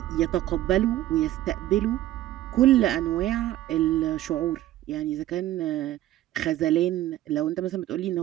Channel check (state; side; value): quieter; left; 14.2 dB